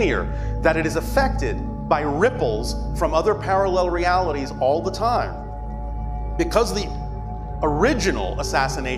that it is affected by ripples from other parallel realities all the time, because the original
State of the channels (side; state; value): both; identical; correlation 1.00